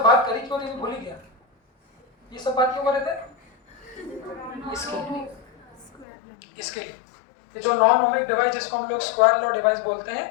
बात करी क्यों नहीं, भूल ही गया। ये सब बात क्यों कर रहे थे? इसके लिए ये जो नॉन ओमिक डिवाइस जिसको हम लोग स्क्वायर लॉ डिवाइस बोलते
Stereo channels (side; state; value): right; drops out; at 6.1 s